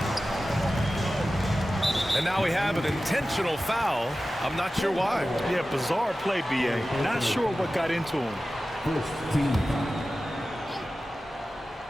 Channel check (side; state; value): both; normal; correlation 0.95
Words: And now we have an intentional foul. I'm not sure why. Yeah, bizarre play, B.A. Not sure what got into him.